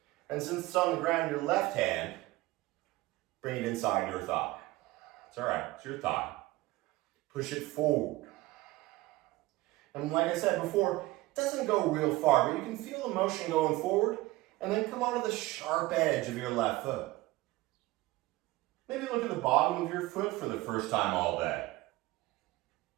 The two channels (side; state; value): left; quieter; 19.2 dB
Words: And since it's on the ground, your left hand, bring it inside your thigh. It's all right, it's your thigh. Push it forward. And like I said before, it doesn't go real far, but you can feel the motion going forward And then come onto the sharp edge of your left foot. Maybe look at the bottom of your foot for the first time all day.